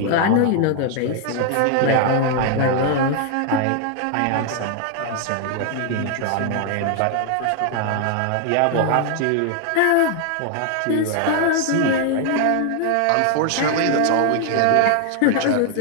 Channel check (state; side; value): different; both; correlation 0.00